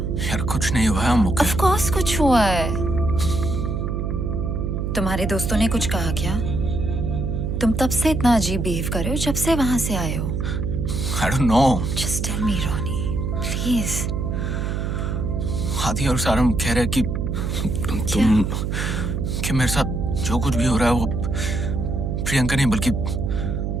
यार कुछ नहीं हुआ है, I'm okay. Of course कुछ हुआ है। तुम्हारे दोस्तों ने कुछ कहा क्या? तुम तब से इतना अजीब बिहेव कर रहे हो जब से वहां से आए हो। I don't know. Just tell me, Ronnie, please. आदि और सारम कह रहे कि तुम कि मेरे साथ जो कुछ भी हो रहा है वो प्रियंका नहीं बल्कि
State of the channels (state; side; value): noise; right; hum, 1 dB below the sound